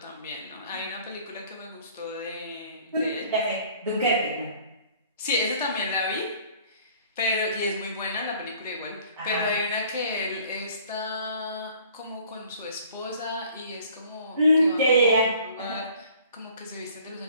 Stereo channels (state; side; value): inverted; both; correlation -0.54